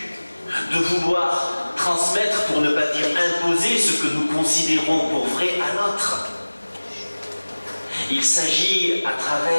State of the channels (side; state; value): both; inverted; correlation -1.00